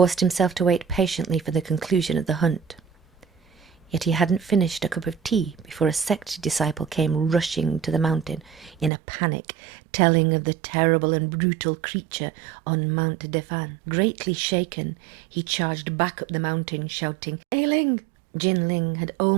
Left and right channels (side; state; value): left; drops out; at 8.9 s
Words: himself to wait patiently for the conclusion of the hunt. Yet he hadn't finished a cup of tea before a sect disciple came rushing to the mountain in a panic, telling of the terrible and brutal creature on Mount Defan. Greatly shaken, he charged back up the mountain, shouting, "Yiling!" Jiling had